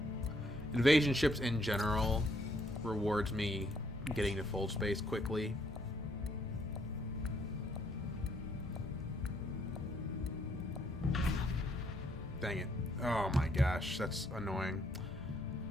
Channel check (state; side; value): normal; both; correlation 0.70